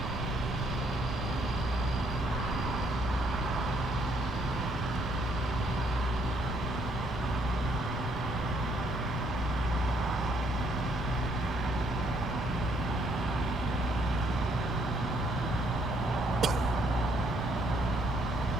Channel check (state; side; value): normal; both; correlation 0.69